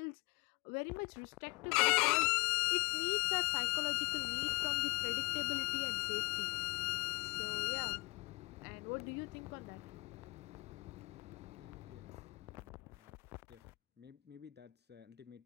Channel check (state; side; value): quieter; right; 25.4 dB